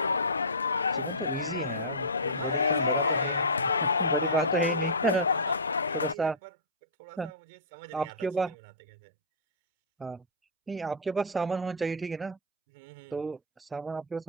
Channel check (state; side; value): normal; both; correlation -0.20